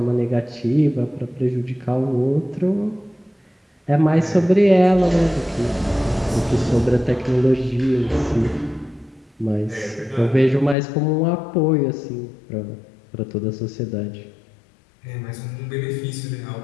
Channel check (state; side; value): drops out; right; at 10.8 s